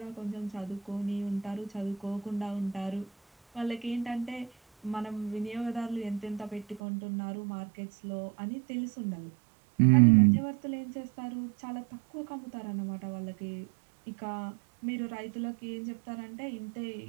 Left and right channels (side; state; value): left; drops out; at 6.8 s